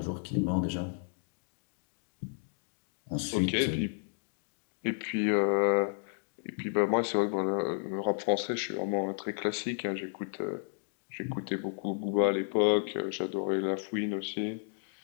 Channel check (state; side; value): silent; right; 56 dB below the other